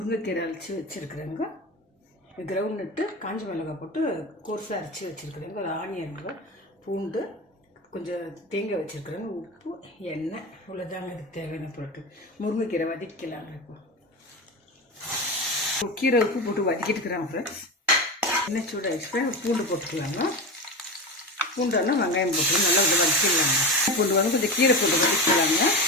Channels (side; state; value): both; normal; correlation 0.23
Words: அரைச்சி வச்சுருக்குறேங்க. கிரவுண்ட் நட்டு காஞ்ச மிளகாய் போட்டு கோர்ஸாக அரைச்சி வச்சுருக்குறேங்க. ஒரு ஆனியனுங்க, பூண்டு, கொஞ்சம் தேங்காய் வச்சுருக்குறேங்க, உப்பு, எண்ணெய், இவ்வளோதாங்க இதுக்கு தேவையான பொருட்கள். முருங்கைக்கீரை வதக்கலாங்க. இப்போ கீரை உப்பு போட்டு வதக்கிட்டு இருக்கிறாங்க ஃப்ரெண்ட்ஸ். எண்ணெய் சூடாகிடுச்சு, பூண்டு போட்டுக்கலாங்க. பூண்டானா வெங்காயம் போட்டு நல்லா கொஞ்சம் வதக்கிடலாங்க. பூண்டு வந்து கொஞ்சம் கீரை போட்டு வதக்கிக்கலாங்க.